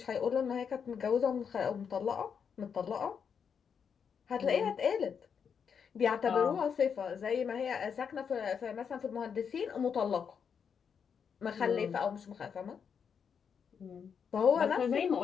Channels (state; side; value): quieter; right; 6.9 dB